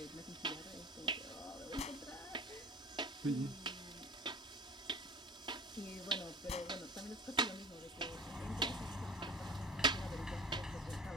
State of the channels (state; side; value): normal; both; correlation 0.37